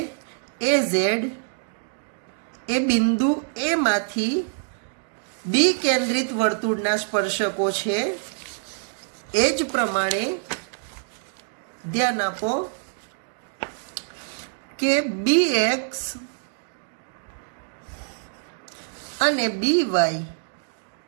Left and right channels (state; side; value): silent; left; digital silence